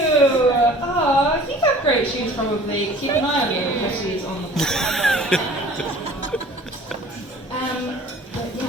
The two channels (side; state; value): both; normal; correlation 0.48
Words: Oh, I think I have great shoes probably. Keep an eye on your shoes on the But